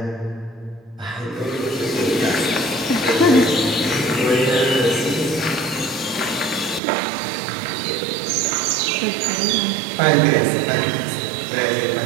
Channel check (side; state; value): left; drops out; at 6.8 s